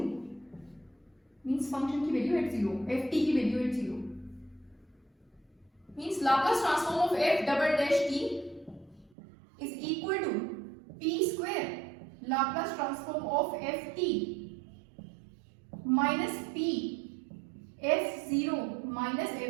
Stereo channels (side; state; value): left; drops out; at 9.2 s